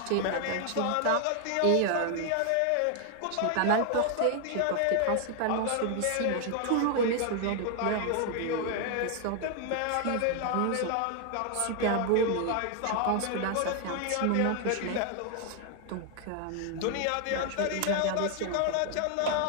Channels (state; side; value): different; both; correlation 0.00